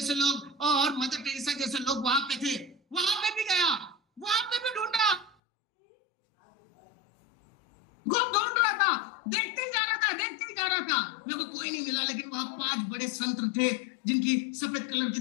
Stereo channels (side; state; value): right; drops out; at 5.4 s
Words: लोग और मदर टेरेसा जैसे लोग वहां पे थे। बड़े संत थे जिनकी सफेद कलर की